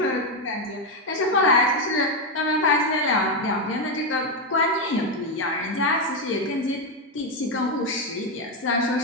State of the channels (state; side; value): normal; both; correlation 0.06